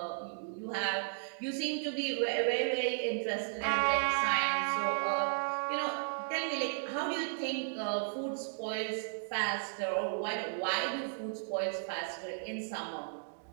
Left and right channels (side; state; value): left; silent; digital silence